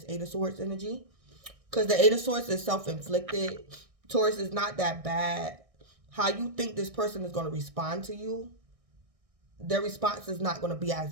8 of Swords energy. Because the 8 of Swords is self-inflicted. Taurus, is not that bad. How you think this person is going to respond to you, their response is not going to be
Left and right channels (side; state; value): left; late; 1.6 ms